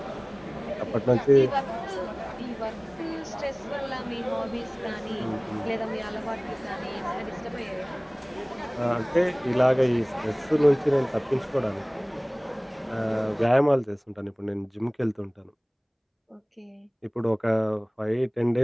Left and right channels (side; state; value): both; identical; correlation 1.00